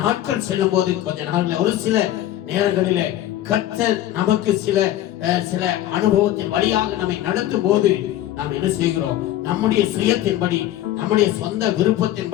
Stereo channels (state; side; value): quieter; right; 13.3 dB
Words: நாட்கள் செல்லும் போது கொஞ்ச நாள்ல ஒரு சில நேரங்களில கர்த்தர் நமக்கு சில அனுபவத்தின் வழியாக நம்மை நடத்தும் போது நாம் என்ன செய்கிறோம்? நம்முடைய சுயத்தின்படி, நம்முடைய சொந்த